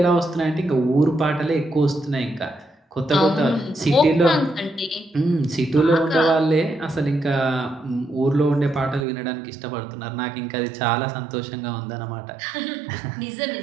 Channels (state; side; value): drops out; left; at 9.1 s